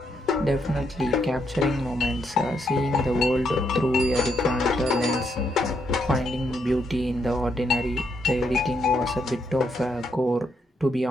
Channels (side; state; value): both; normal; correlation 0.77